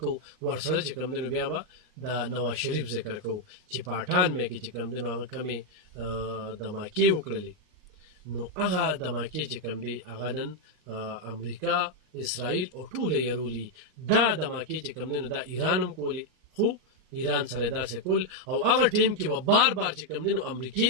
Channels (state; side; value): late; left; 39 ms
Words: ورسره چې کوم دی نو بیا به د نواز شریف ذکر کو چې پاټان مې کې چې کوم دی نو هغه کمی د ماکی وکړلې نو هغه دماکې چې کوم دی هغه نن امریکا اسرائیل او ټول یې دا دماکې چې کوم دی نو دا ایران هم کولی خو ایران سره داسې کول او هغه ټیم کې به بار بار چې کوم دی نو امریکای